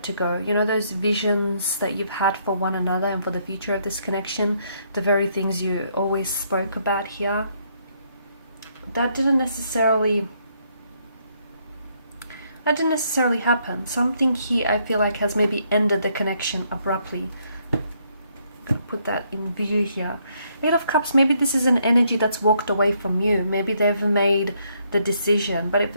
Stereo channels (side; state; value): both; inverted; correlation -0.72